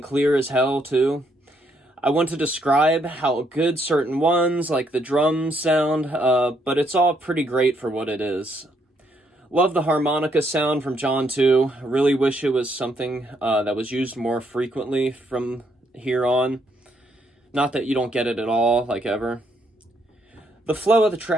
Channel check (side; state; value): both; normal; correlation 0.73